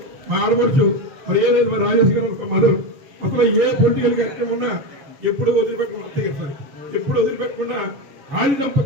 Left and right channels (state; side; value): late; left; 6.9 ms